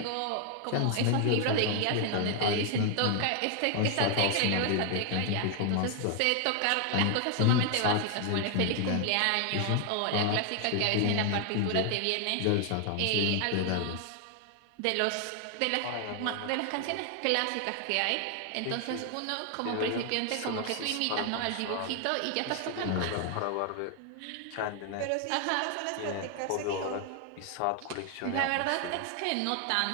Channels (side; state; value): both; different; correlation 0.00